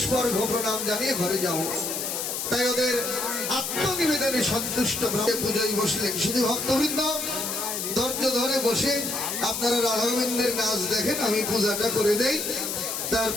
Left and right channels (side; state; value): left; noise; hiss, 3 dB below the sound